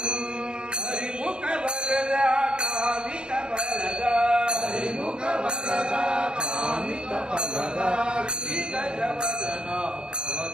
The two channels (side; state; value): left; late; 0.050 ms